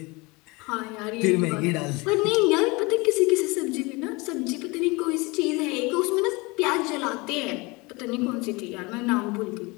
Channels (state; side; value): quieter; right; 25.4 dB